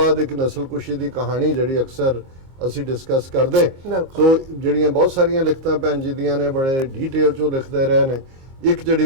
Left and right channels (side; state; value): left; late; 22 ms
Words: ਇੱਕ ਨਸਲਕੁਸ਼ੀ ਦੀ ਕਹਾਣੀ ਜਿਹੜੀ ਅਕਸਰ ਅਸੀਂ ਡਿਸਕਸ ਕਰਦੇ। ਸੋ ਜਿਹੜੀਆਂ ਬਹੁਤ ਸਾਰੀਆਂ ਲਿਖਤਾਂ ਭੈਣ ਜੀ ਦੀਆਂ ਨੇ ਬੜੇ ਡੀਟੇਲ 'ਚੋਂ ਲਿਖਦੇ ਰਹੇ ਨੇ। ਇੱਕ ਜਿਹੜੀ